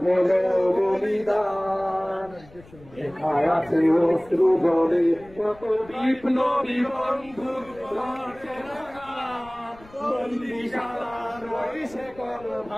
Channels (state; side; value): noise; left; rumble, 23 dB below the sound